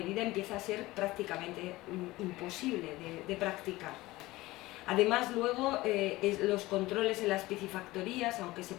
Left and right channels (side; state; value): right; quieter; 19.0 dB